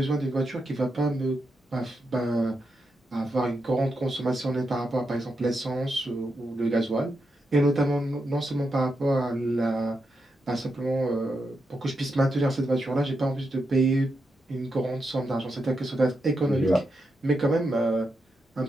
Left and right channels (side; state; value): both; normal; correlation 0.85